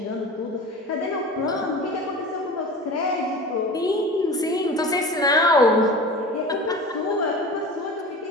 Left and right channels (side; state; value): both; normal; correlation 0.34